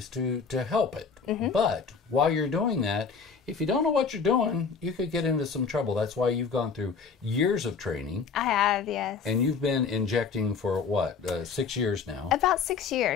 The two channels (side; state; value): right; quieter; 5.5 dB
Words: to help it. But while you're doing that, if you don't know what you're doing, you could get into some trouble. That's why you've gone through years of training. I have, yes. And you've been injecting for what, 6 years now? About 6